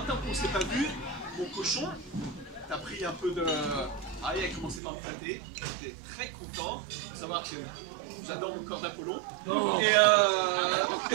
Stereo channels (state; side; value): drops out; left; at 4.8 s